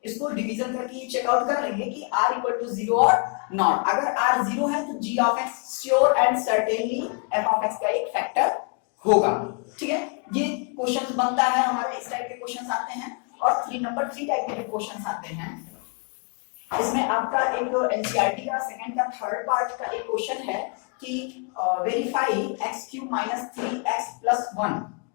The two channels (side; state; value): right; quieter; 36.5 dB